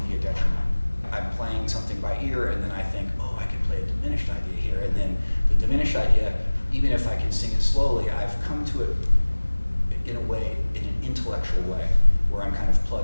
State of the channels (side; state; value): both; inverted; correlation -1.00